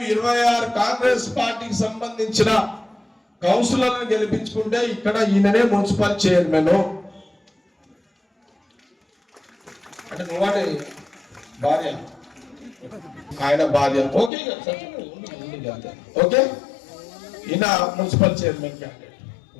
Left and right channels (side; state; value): right; drops out; at 14.3 s